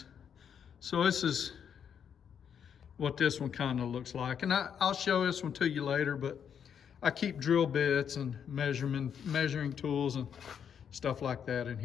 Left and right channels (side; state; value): right; quieter; 7.9 dB